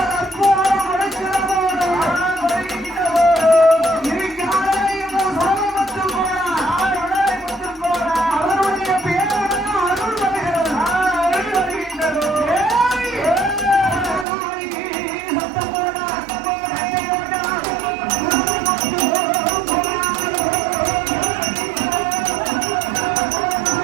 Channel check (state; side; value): drops out; left; at 14.2 s